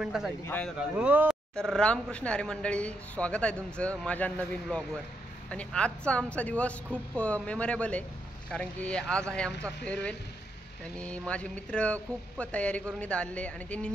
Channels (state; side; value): normal; both; correlation 0.80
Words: हो तर रामकृष्ण हरी मंडळी, स्वागत आहे तुमचं माझ्या नवीन ब्लॉगवर. आणि आजचा आमचा दिवस खूप मेमोरेबल आहे, कारण की आज आहे आमचा फेअरवेल. आणि माझे मित्र खूप तयारी करून इथं आले आणि त्यांनी